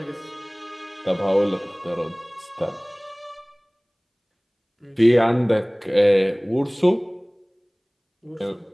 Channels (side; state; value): both; identical; correlation 1.00